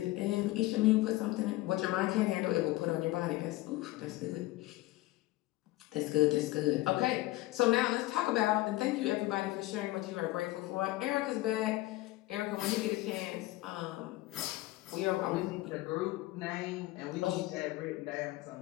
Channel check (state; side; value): quieter; right; 18.5 dB